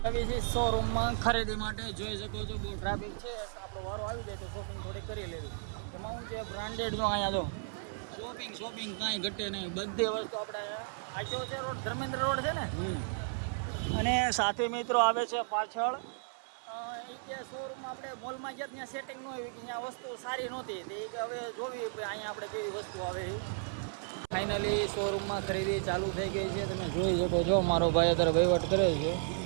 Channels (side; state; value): left; silent; 55 dB below the other